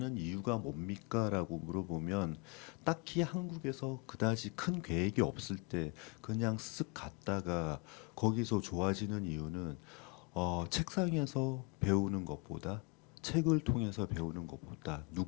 이유가 뭡니까라고 물어보면 딱히 한국에서 그다지 큰 계획이 없을 때 그냥 쓱 갔다가 거기서 좋아지는 이유는 책상에서 배우는 것보다 책을 통해서 배우는 것보다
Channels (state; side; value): quieter; right; 30.5 dB